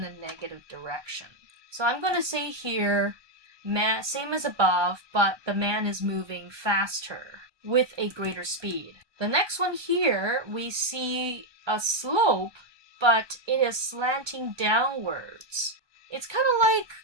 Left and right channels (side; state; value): left; late; 1.2 ms